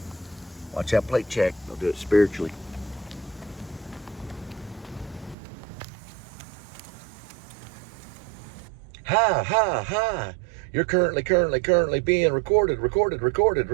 Watch that plate check. They'll do it spiritually. Hi, hi, hi. You're currently being recorded.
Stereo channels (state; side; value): drops out; left; at 5.4 s